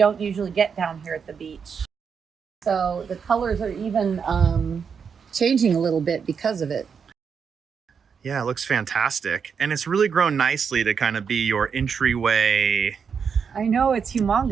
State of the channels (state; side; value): quieter; left; 6.4 dB